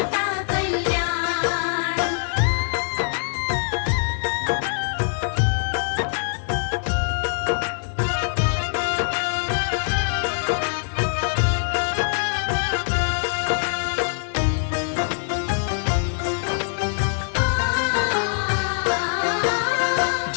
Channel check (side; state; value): right; silent; digital silence